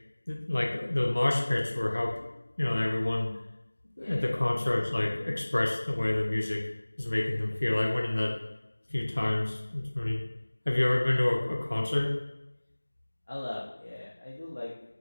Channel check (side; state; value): both; inverted; correlation -1.00